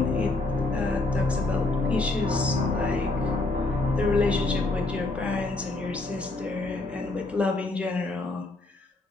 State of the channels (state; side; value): quieter; right; 3.1 dB